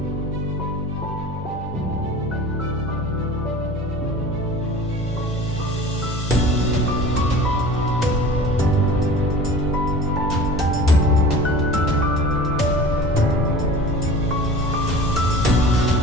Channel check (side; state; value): both; normal; correlation 0.40